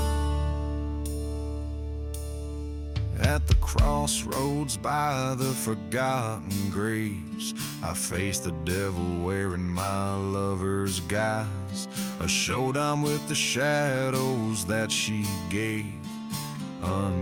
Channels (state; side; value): identical; both; correlation 1.00